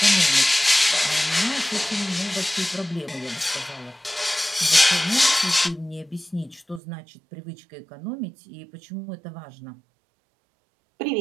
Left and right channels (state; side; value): drops out; left; at 6.8 s